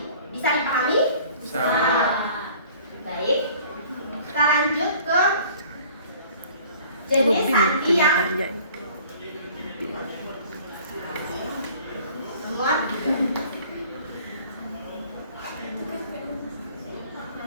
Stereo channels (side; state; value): both; inverted; correlation -0.50